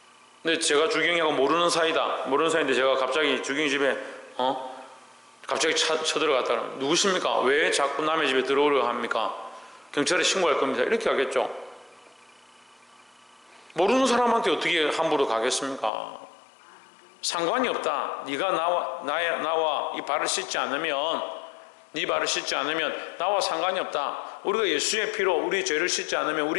근데 제가 주경이하고 모르는 사이인데 제가 갑자기 주경이 집에 갑자기 쳐들어갔다 그러면 누구십니까? 왜 자꾸 남의 집에 들어오려고 합니까? 경찰에 신고할 겁니다 이렇게 하겠죠. 모르는 사람한테 어떻게 함부로 가겠습니까? 상관이 없다. 네가 나와 이 발을 씻지 않으면 네 발을 씻지 않으면 나와 상관이 없다. 우리가 예수의 피로 우리 죄를 씻지 않으면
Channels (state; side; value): drops out; right; at 15.9 s